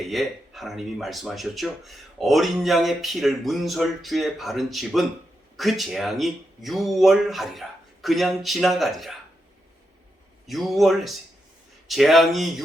하나님이 말씀하셨죠. 어린 양의 피를 문설주에 바른 집은 그 재앙이 6월하리라. 그냥 지나가리라. 6월 했어요. 재앙이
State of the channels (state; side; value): normal; both; correlation 0.85